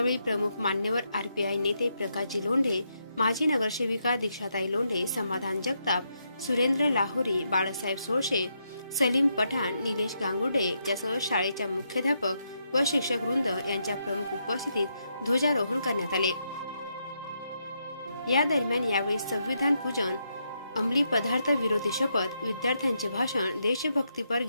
प्रमुख मान्यवर RPI नेते प्रकाशजी लोंढे, माजी नगरसेविका दीक्षाताई लोंढे, समाधान जगताप, सुरेंद्र लाहोरी, बाळासाहेब सोळशे, सलीम पठाण, निलेश गांगुर्डे यासह शाळेच्या मुख्याध्यापक व शिक्षक वृंद यांच्या प्रमुख उपस्थितीत ध्वजारोहण करण्यात आले। या दरम्यान यावेळी संविधान पूजन, अंमली पदार्थ विरोधी शपथ, विद्यार्थ्यांचे भाषण, देशभक्तीपर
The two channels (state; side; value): inverted; both; correlation -0.80